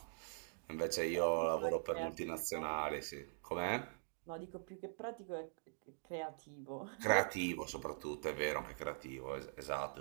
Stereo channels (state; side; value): silent; left; digital silence